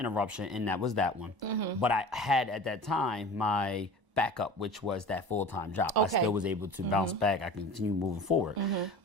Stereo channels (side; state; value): left; late; 1.0 ms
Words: and that was that one. But I had at that time my backup, which was that full-time job. I still was able to bounce back. I continue moving forward.